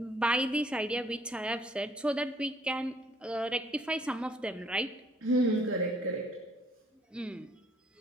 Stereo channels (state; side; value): normal; both; correlation 0.62